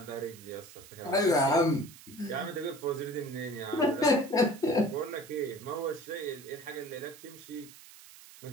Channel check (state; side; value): noise; right; hiss, 19 dB below the sound